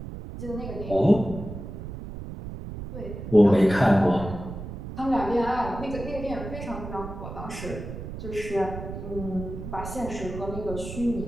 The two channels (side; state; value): right; noise; rumble, 9 dB below the sound